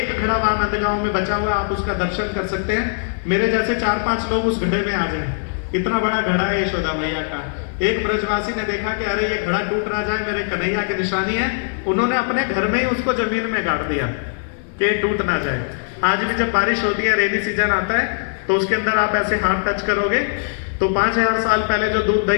घड़ा वहां नंदगांव में बचा हुआ, आप उसका दर्शन कर सकते हैं। मेरे जैसे 4-5 लोग उस घड़े में आ जाएं, इतना बड़ा घड़ा है यशोदा मैया का। एक ब्रजवासी ने देखा कि अरे ये घड़ा टूट ना जाए, मेरे कन्हैया की निशानी है, उन्होंने अपने घर में ही उसको जमीन में गाड़ दिया कि टूट ना जाए। आज भी जब बारिश होती है, रेनी सीजन आता है, तो उसके अंदर आप ऐसे हाथ टच करोगे तो 5000 साल पहले जो दूध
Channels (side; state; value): right; silent; digital silence